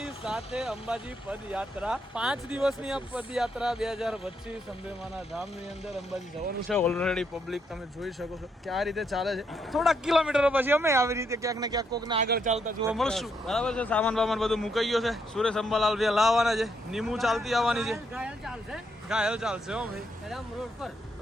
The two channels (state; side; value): normal; both; correlation 0.76